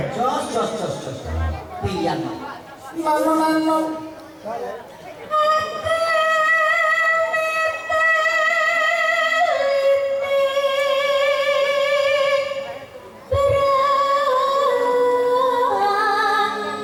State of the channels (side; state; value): both; identical; correlation 1.00